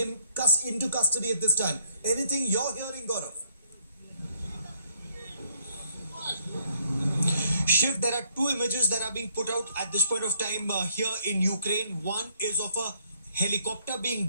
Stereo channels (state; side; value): inverted; both; correlation -0.68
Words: into custody at this time. Anything you're hearing, Gaurav? Shiv, there are two images that are being put out at this point of time here in Ukraine. One is of a helicopter